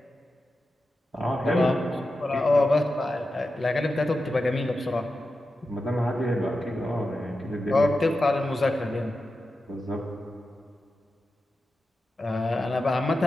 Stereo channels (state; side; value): normal; both; correlation 0.91